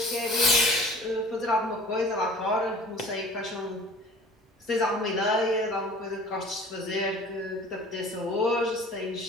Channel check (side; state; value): both; normal; correlation 0.46